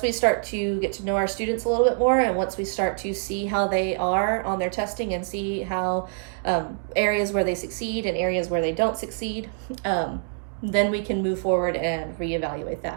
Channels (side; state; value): left; silent; digital silence